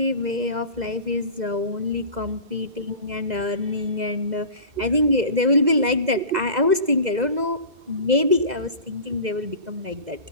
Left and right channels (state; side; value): late; left; 2.0 ms